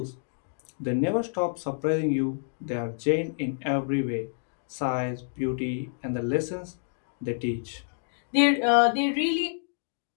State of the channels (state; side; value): silent; right; digital silence